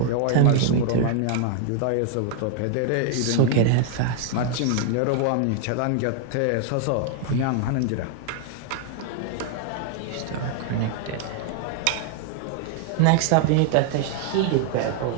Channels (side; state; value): both; different; correlation 0.00